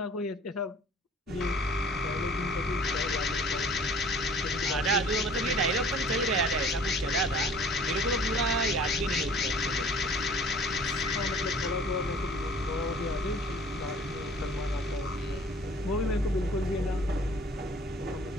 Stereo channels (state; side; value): normal; both; correlation 0.50